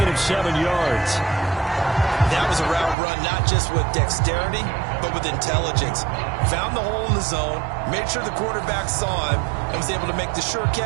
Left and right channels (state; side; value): drops out; left; at 3.0 s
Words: of 7 yards. That was a route run not just with dexterity, but with intelligence. Found the hole in the zone, made sure the quarterback saw him, and was able to make the sure